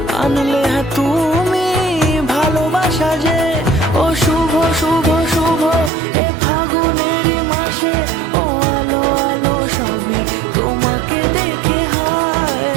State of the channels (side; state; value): left; drops out; at 5.9 s